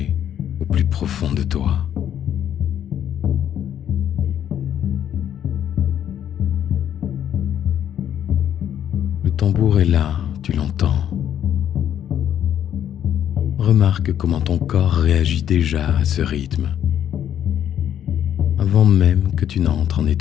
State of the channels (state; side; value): quieter; right; 10.0 dB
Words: au plus profond de toi. Le tambour est là, tu l'entends. Remarque comment ton corps réagit déjà à ce rythme, avant même que tu n'entres en